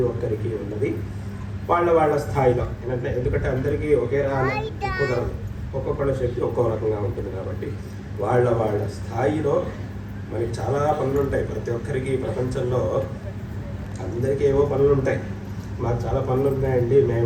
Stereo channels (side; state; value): both; identical; correlation 1.00